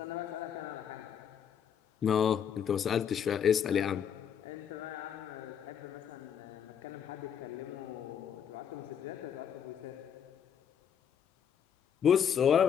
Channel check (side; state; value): right; quieter; 8.3 dB